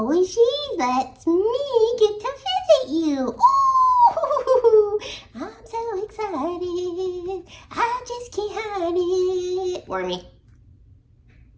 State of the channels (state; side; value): identical; both; correlation 1.00